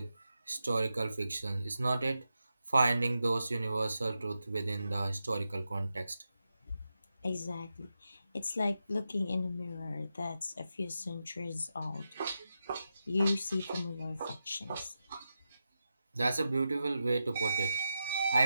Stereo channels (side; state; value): both; inverted; correlation -0.89